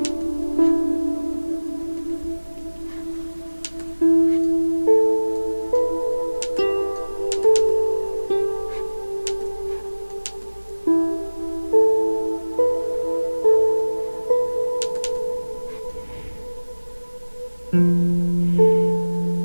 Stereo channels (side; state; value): both; inverted; correlation -1.00